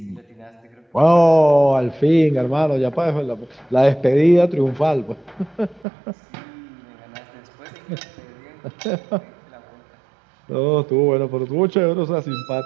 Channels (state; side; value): drops out; left; at 5.9 s